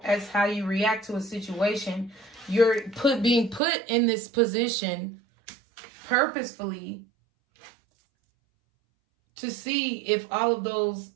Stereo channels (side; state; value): left; drops out; at 3.6 s